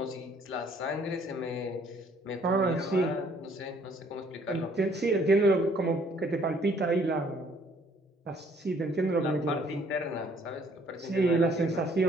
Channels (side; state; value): both; normal; correlation 0.62